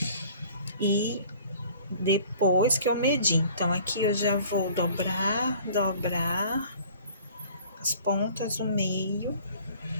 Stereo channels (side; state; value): both; inverted; correlation -0.50